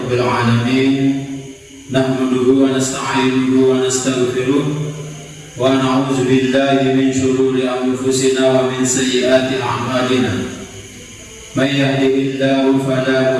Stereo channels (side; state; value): both; identical; correlation 1.00